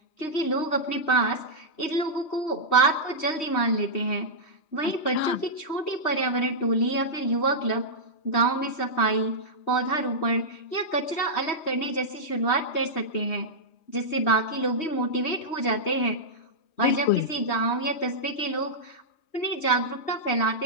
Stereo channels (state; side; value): late; right; 3.1 ms